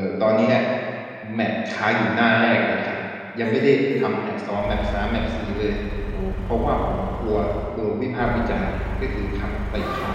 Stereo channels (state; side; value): identical; both; correlation 1.00